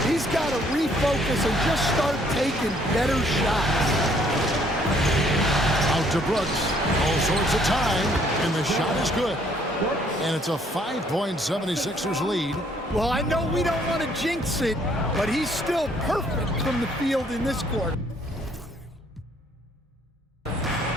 He's got to refocus and just start taking better shots. Out to Brooks. All sorts of time, and the shot is good. And it's a 5-point 76ers lead. Well, I know we don't want to jinx it, but he's still perfect from the field in this quarter.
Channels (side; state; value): both; normal; correlation 0.64